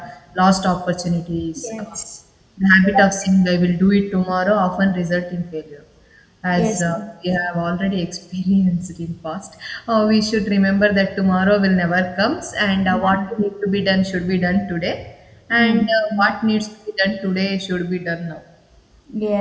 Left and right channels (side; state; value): both; identical; correlation 1.00